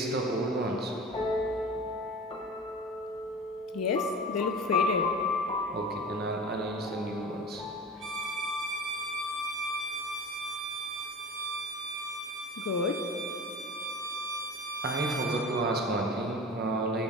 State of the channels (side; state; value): both; normal; correlation 0.35